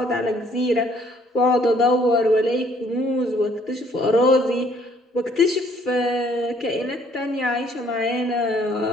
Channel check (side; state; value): both; normal; correlation 0.63